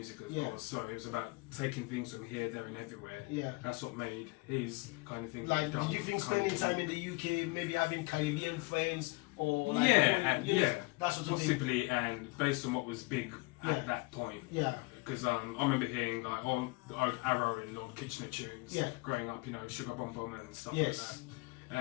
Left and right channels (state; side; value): quieter; right; 25.8 dB